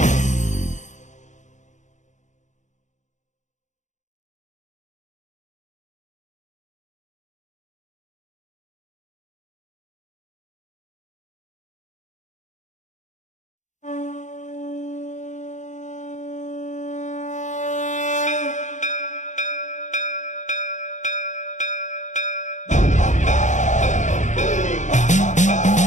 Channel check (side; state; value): right; late; 0.35 ms